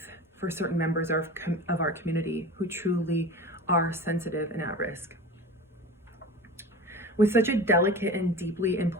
for certain members of our community who truly are sensitive and at risk. With such a delicate and deeply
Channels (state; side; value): normal; both; correlation 0.34